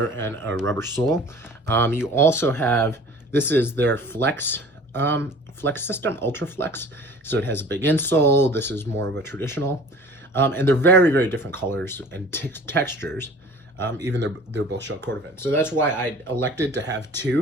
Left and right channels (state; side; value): normal; both; correlation 0.45